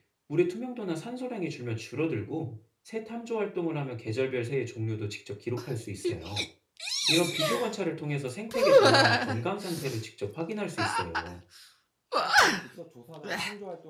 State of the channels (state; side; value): identical; both; correlation 1.00